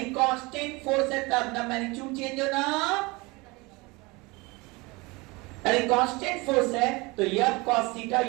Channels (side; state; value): left; quieter; 24.9 dB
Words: कांस्टेंट फोर्स है तब ना मैग्नीट्यूड चेंज होना, यदि कांस्टेंट फोर्स है तो f cos थीटा,